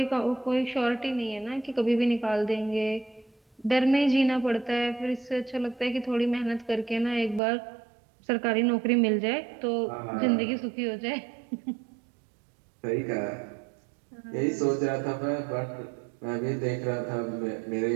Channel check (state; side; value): drops out; left; at 7.4 s